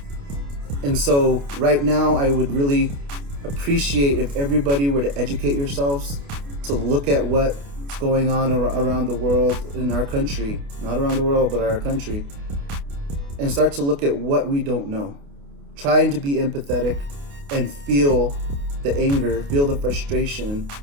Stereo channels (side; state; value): left; late; 28 ms